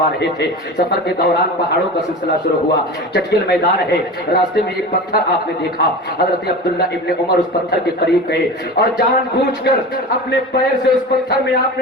رہے تھے، سفر کے دوران پہاڑوں کا سلسلہ شروع ہوا، چٹیل میدان ہے، راستے میں ایک پتھر آپ نے دیکھا۔ حضرت عبداللہ ابن عمر اس پتھر کے قریب گئے اور جان بوجھ کر اپنے پیر سے اس پتھر میں آپ نے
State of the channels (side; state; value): both; normal; correlation 0.31